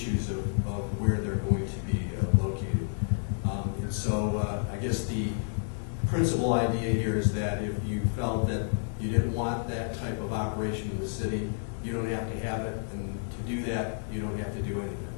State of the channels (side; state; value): right; silent; 58 dB below the other